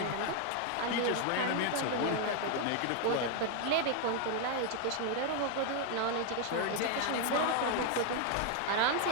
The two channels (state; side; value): different; both; correlation 0.00